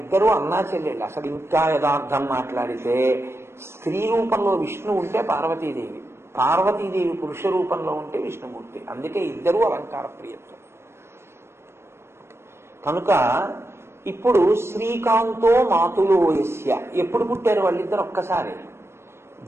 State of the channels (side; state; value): left; late; 0.12 ms